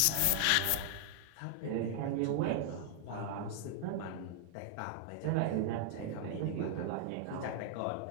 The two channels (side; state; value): both; different; correlation 0.00